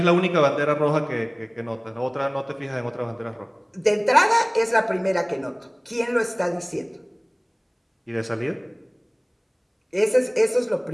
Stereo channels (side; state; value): both; identical; correlation 1.00